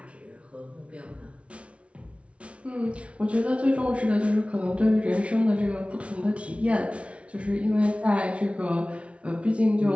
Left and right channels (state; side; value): late; left; 0.061 ms